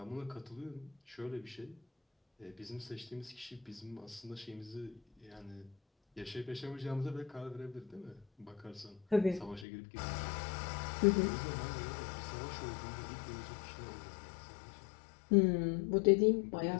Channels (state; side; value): drops out; right; at 9.7 s